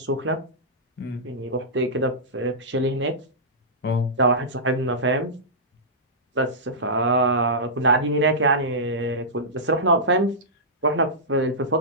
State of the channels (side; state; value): both; normal; correlation -0.15